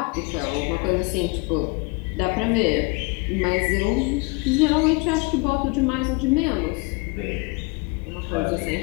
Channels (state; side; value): quieter; right; 27.5 dB